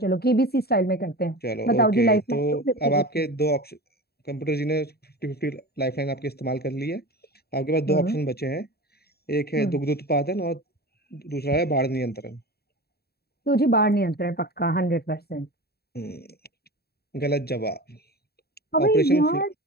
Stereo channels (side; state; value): right; late; 0.46 ms